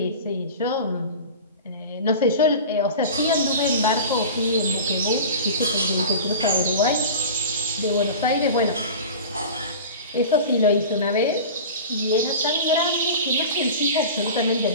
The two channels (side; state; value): both; inverted; correlation -0.33